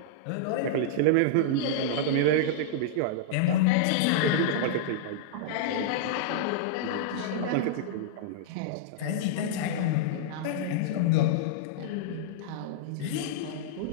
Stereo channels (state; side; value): different; both; correlation -0.02